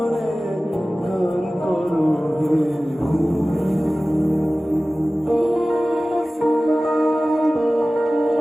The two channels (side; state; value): both; normal; correlation 0.97